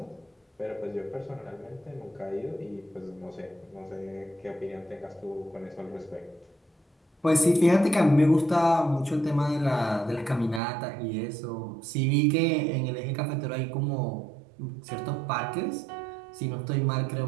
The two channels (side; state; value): left; drops out; at 10.6 s